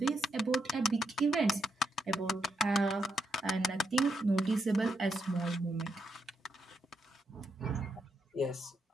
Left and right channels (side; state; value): both; normal; correlation 0.80